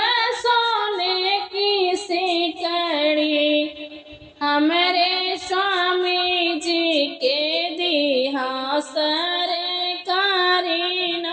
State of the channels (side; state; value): both; identical; correlation 1.00